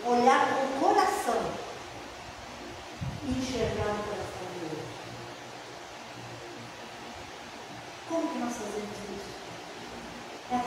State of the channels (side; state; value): both; identical; correlation 1.00